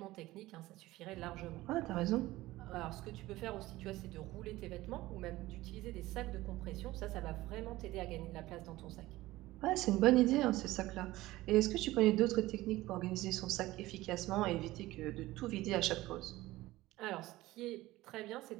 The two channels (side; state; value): left; quieter; 17.7 dB